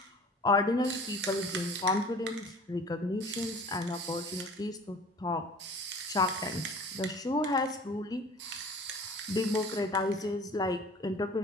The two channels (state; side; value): normal; both; correlation 0.45